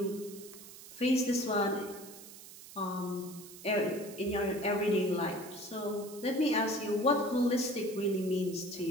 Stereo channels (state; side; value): noise; right; hiss, 16 dB below the sound